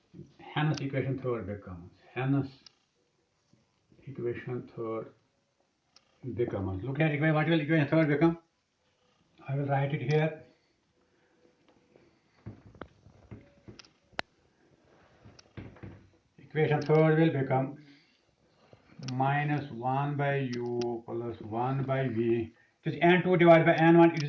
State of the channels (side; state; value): both; identical; correlation 1.00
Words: Hence equation third becomes. Look at equation. What will equation third become? I will write it here. Equation third will become minus 1 by u plus 1 by v. It is n2 divided by n1, it